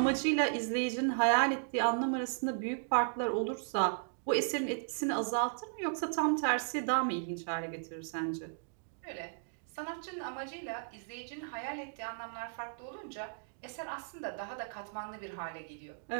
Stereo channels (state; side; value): silent; left; digital silence